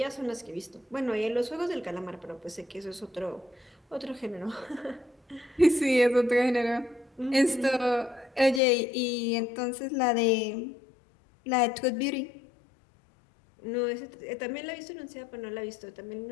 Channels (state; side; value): drops out; right; at 8.6 s